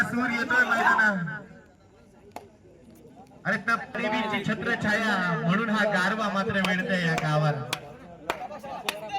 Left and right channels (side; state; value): both; identical; correlation 1.00